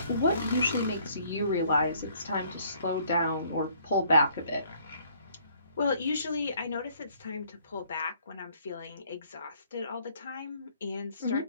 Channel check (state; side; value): inverted; both; correlation -0.62